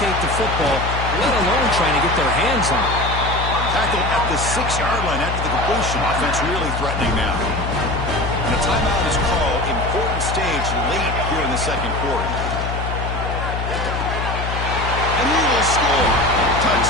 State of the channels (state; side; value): noise; left; hum, 4 dB below the sound